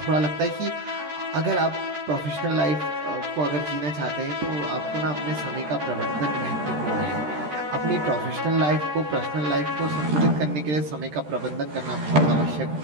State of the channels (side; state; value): left; late; 13 ms